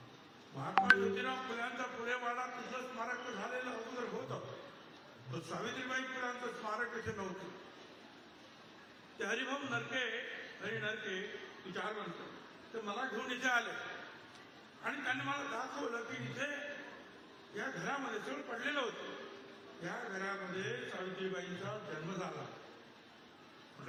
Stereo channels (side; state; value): both; identical; correlation 1.00